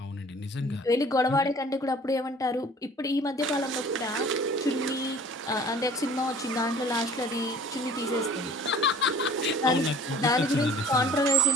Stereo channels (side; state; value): both; normal; correlation 0.48